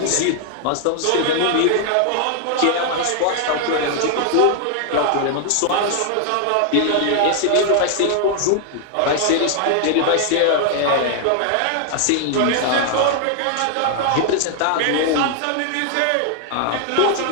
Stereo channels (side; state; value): both; different; correlation 0.00